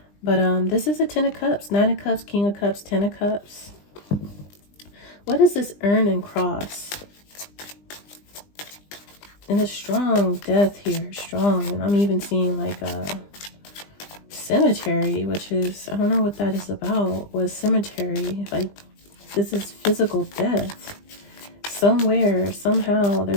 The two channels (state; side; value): late; right; 20 ms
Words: But this is a 10 of Cups, 9 of Cups, King of Cups, 10 of Cups. What is this urn and cross? And a strong death here, strong. And I'm even seeing like a cemetery, which is, I don't know what that is about. What cemetery? Like, this is physical death. Somewhere, somehow,